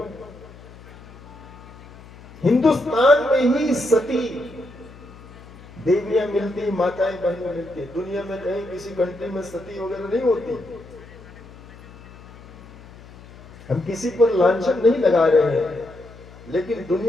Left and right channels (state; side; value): noise; left; hum, 19 dB below the sound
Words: हिंदुस्तान में ही सती देवियां मिलती, माताएं बहनें मिलती है। दुनिया में कहीं किसी कंट्री में सती वगैरह नहीं होती। हम किसी पर लांछन नहीं लगा रहे हैं, लेकिन